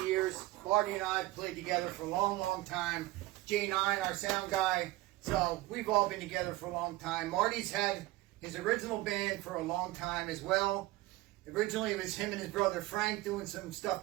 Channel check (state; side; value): quieter; left; 18.4 dB